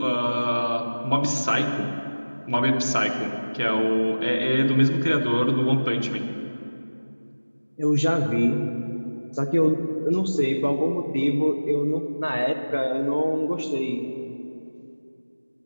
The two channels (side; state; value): both; inverted; correlation -1.00